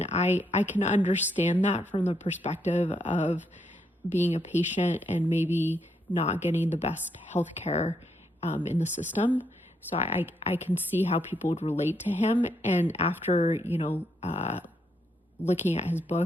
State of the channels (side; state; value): both; normal; correlation 0.77